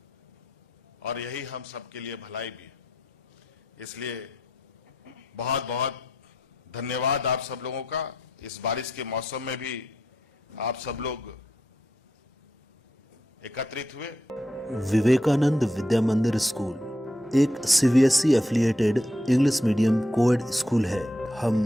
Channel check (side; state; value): both; normal; correlation 0.81